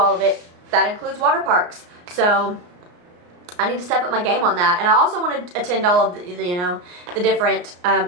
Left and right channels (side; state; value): left; late; 34 ms